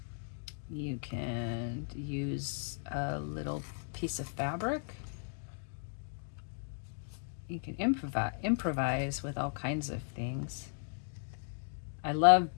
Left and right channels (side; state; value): right; silent; digital silence